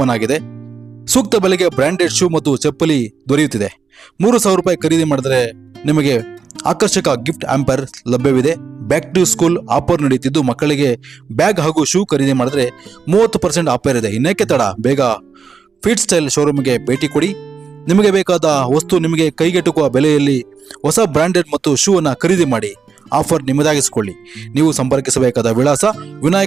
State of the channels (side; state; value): left; quieter; 5.7 dB